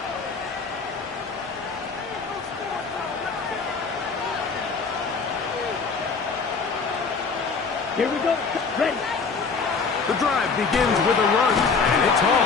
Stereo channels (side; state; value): right; quieter; 4.9 dB